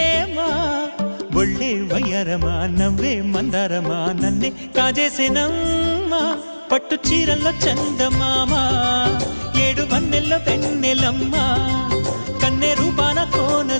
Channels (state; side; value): inverted; both; correlation -1.00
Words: ఒళ్ళే వయ్యారమా నవ్వే మందారమా నన్నే కాజేసేనమ్మా పట్టు చీరల్లో చందమామా ఏడు వన్నెల్లో పెన్నెలమ్మా కన్నె రూపాన